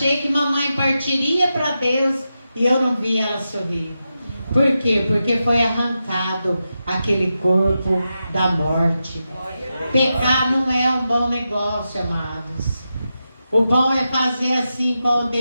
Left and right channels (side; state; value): both; inverted; correlation -0.89